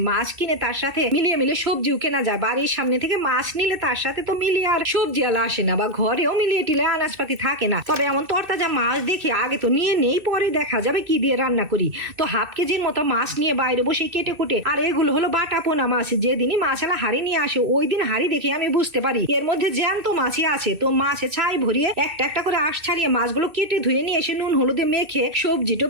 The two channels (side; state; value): left; late; 2.6 ms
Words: মাছ কিনে তার সাথে মিলিয়ে সবজিও কেনা যায়। বাড়ির সামনে থেকে মাছ নিলে তার সাথে তো মিলিয়ে আর সবজি আলা আসে না, বা ঘরেও মিলিয়ে টিলে আনাজপাতি থাকে না। তবে এমন তরতাজা মাছ দেখে আগে তো নিয়ে নেই, পরে দেখা যাবে কি দিয়ে রান্না করি। তো হাফ কেজির মতো মাছ নিয়ে বাইরে বসে কেটে কুটে, আর এগুলো হলো বাটা পোনা মাছ। যেদিনই মাছালা হাড়ি নিয়ে আসে ওই দিন হাড়ি দেখে আমি বুঝতে পারি এর মধ্যে জ্যান্ত মাছই আছে। তো মাছে ছাই ভরিয়ে একটা একটা করে আঁশ ছাড়িয়ে মাছগুলো কেটে ধুয়ে নিয়ে এসে নুন হলুদে মেখে, সবজি